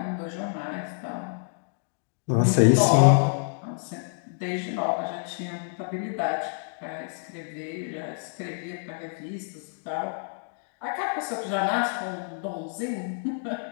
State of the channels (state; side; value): silent; right; digital silence